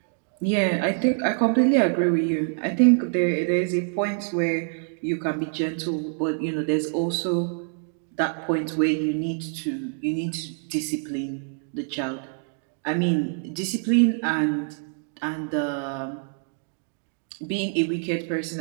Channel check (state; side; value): silent; left; 55 dB below the other